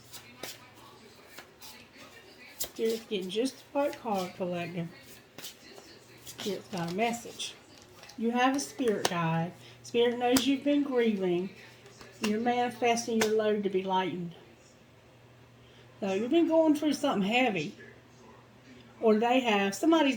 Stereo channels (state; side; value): identical; both; correlation 1.00